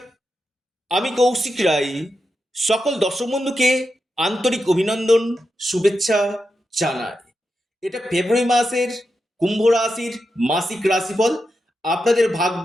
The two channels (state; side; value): normal; both; correlation 0.87